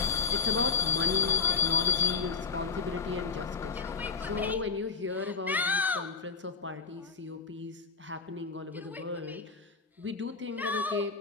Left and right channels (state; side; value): quieter; right; 5.0 dB